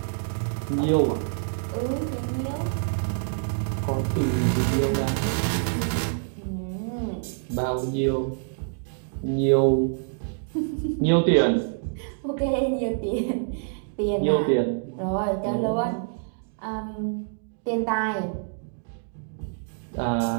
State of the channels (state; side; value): silent; left; digital silence